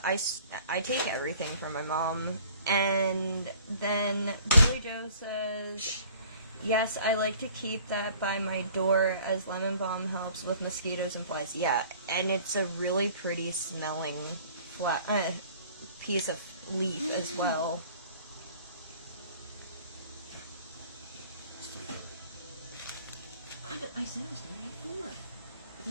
take everything from my mom. And then Billy Joe says, yes, I like to keep that by my door as lemon balm helps with mosquitoes and flies. Yeah, and it's a really pretty smelling piece of leaf as well. I said I was going to have 4. But you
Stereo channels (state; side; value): inverted; both; correlation -0.52